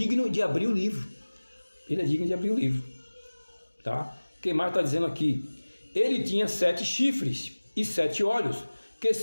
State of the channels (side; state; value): both; inverted; correlation -1.00